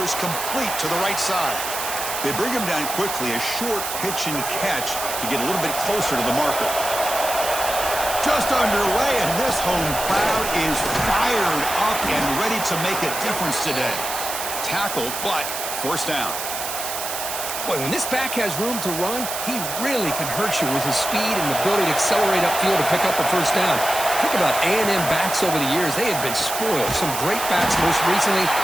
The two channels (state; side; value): noise; right; hiss, 5 dB below the sound